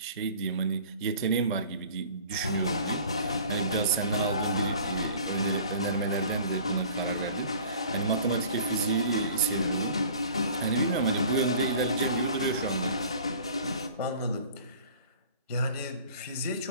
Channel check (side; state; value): both; inverted; correlation -0.47